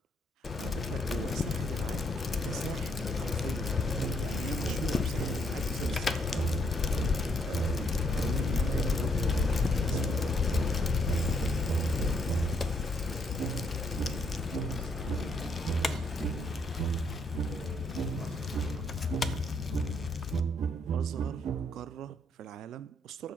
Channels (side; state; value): both; normal; correlation 0.72